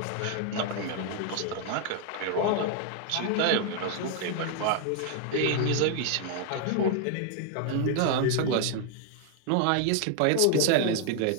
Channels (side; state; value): both; different; correlation 0.00